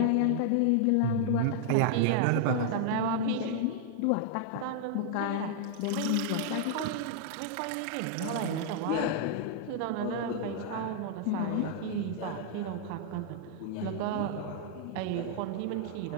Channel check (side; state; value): both; different; correlation -0.01